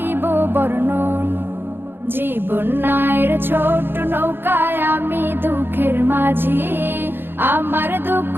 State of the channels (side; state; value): left; late; 0.10 ms